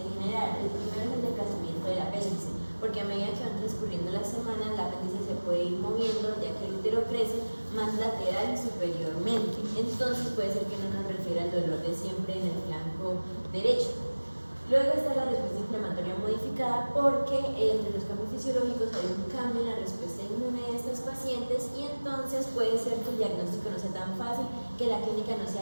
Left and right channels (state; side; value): inverted; both; correlation -1.00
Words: general. El primero es el desplazamiento del apéndice, porque a medida que van transcurriendo las semanas, el apéndice se puede ir moviendo, ya que el útero crece más lateral y superiormente. Entonces puede ser que no nos refiera al dolor de siempre en el flanco derecho. Luego está la respuesta inflamatoria modificada, porque entre los cambios fisiológicos hay un cambio en la respuesta inmune de estas pacientes y entonces puede ser que el diagnóstico no sea tan fácil, que la clínica no